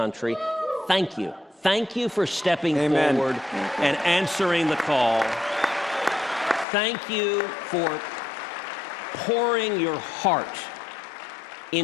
thank you. Thank you for stepping forward and answering the call. Thank you for pouring your heart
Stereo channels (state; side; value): drops out; right; at 6.7 s